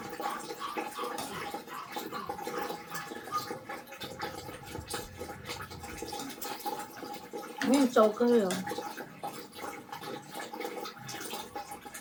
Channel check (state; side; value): identical; both; correlation 1.00